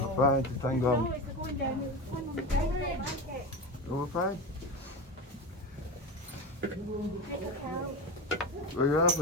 fine, just hang No, on. it's going down. It's going on the ground. I don't like it. Oh, we're fine. Take a count. Well, you're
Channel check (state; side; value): normal; both; correlation 0.22